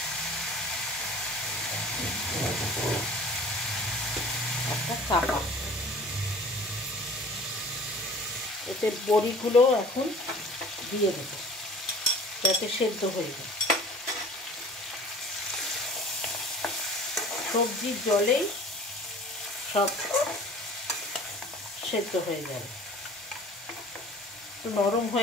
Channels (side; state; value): both; normal; correlation 0.46